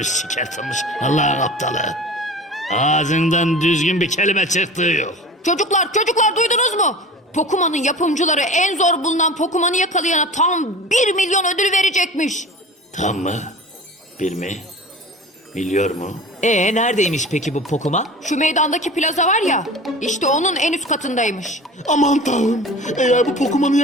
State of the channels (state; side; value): normal; both; correlation 0.37